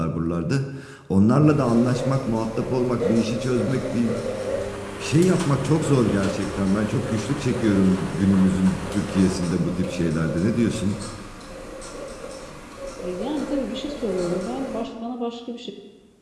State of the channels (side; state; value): both; identical; correlation 1.00